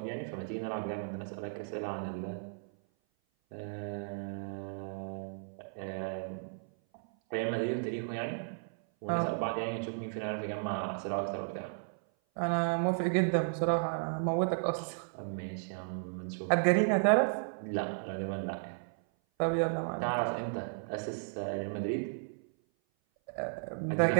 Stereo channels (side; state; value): left; silent; 55 dB below the other